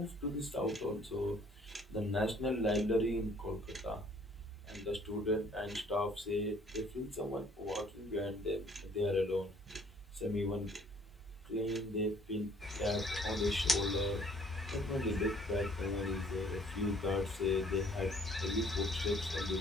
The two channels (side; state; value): both; normal; correlation 0.59